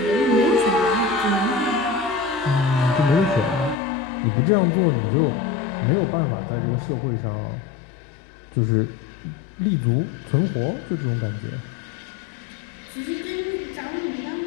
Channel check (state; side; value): drops out; right; at 3.8 s